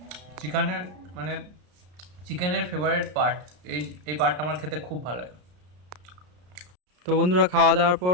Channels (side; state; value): left; late; 33 ms